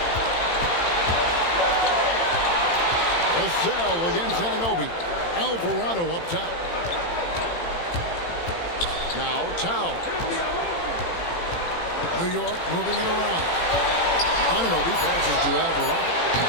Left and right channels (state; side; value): late; right; 18 ms